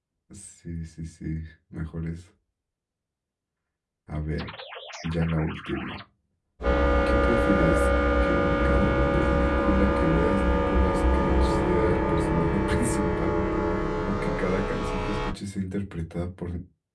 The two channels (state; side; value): identical; both; correlation 1.00